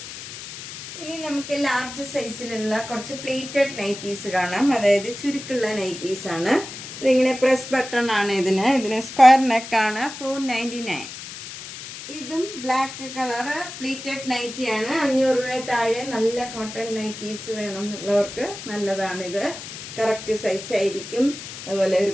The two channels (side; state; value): left; noise; hiss, 11 dB below the sound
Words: ഇനി നമുക്ക് ലാർജ് സൈസിലുള്ള കുറച്ച് പ്ലേറ്റഡ് നൈറ്റീസ് കാണാം. അതായത് ചുരുക്കുള്ള നൈറ്റീസ് ആണ്. ഇതിങ്ങനെ പ്രസ് ബട്ടൺ ആണ്. ഇതിന് സ്ക്വയർ നെക്കാണ്. 499. ഇതും ബ്ലാക്ക് കളറ് പ്ലേറ്റഡ് നൈറ്റിയാണ്. 500 രൂപ താഴെ നല്ല കോട്ടൺ നൈറ്റീസ് വേണം എന്നുള്ളവർക്ക് നല്ലതാണിത്. കറക്റ്റ് സൈസ് ആയിരിക്കും. അതുപോലെ ഒരു